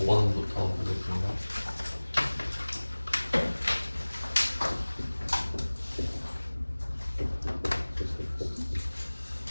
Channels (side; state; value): both; inverted; correlation -1.00